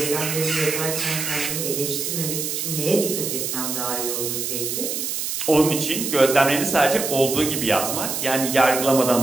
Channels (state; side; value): noise; right; hiss, 3 dB below the sound